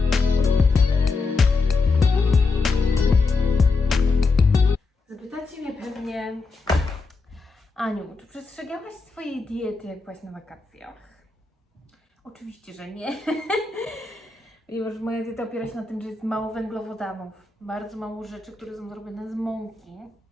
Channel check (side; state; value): right; quieter; 4.0 dB